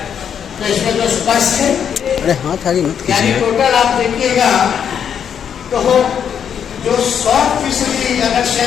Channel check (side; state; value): right; quieter; 8.1 dB